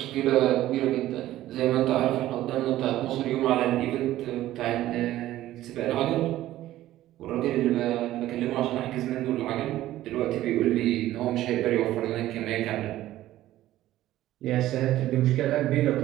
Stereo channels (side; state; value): left; quieter; 14.5 dB